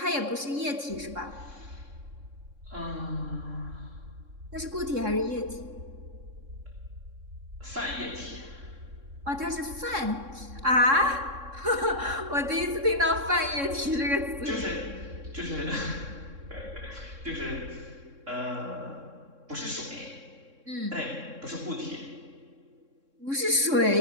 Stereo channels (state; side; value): late; left; 3.6 ms